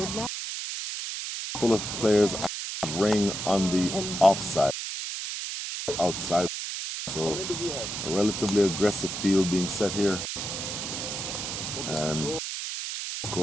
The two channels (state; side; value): noise; right; hiss, 5 dB below the sound